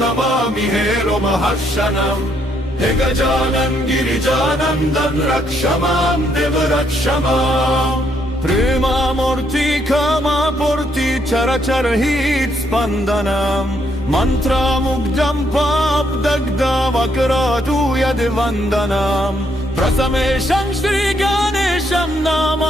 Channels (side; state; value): both; normal; correlation 0.73